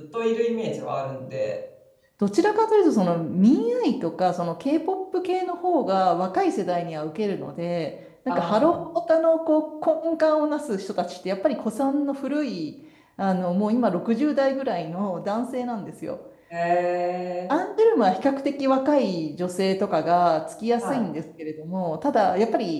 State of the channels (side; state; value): both; identical; correlation 1.00